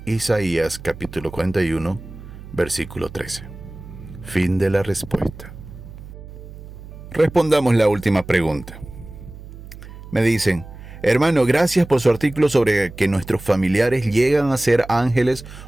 Isaías capítulo 41, versículo 13. Fin de la respuesta. Respondamos la última pregunta. Me dicen: hermano, gracias por su artículo sobre que nuestros familiares llegan a ser ángeles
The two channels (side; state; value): right; noise; hum, 15 dB below the sound